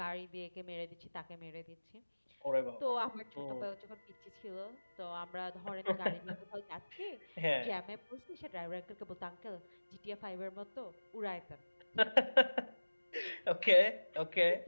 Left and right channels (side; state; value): both; inverted; correlation -1.00